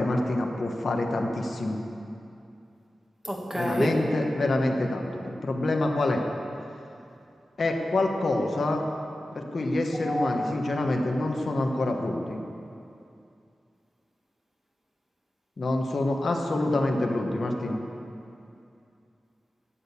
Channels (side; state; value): both; normal; correlation 0.94